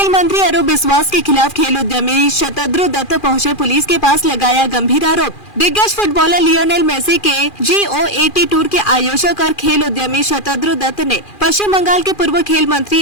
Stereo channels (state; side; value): late; right; 2.4 ms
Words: मंत्री अरूप बिस्वास के खिलाफ खेल उद्यमी शतद्रु दत्त पहुंचे पुलिस के पास, लगाया गंभीर आरोप। दिग्गज फुटबॉलर लियोनेल मेसी के G-O-A-T टूर के आयोजक और खेल उद्यमी शतद्रु दत्त ने पश्चिम बंगाल के पूर्व खेल मंत्री